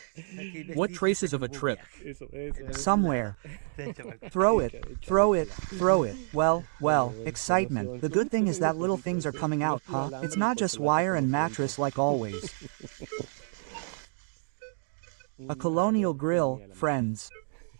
What traces of a trip? Somewhere. Throw it. Well, excitement. The good thing is that little things are coming out, huh? It's not just wire and mattress like always. A colonial grill, friends.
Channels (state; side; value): silent; left; digital silence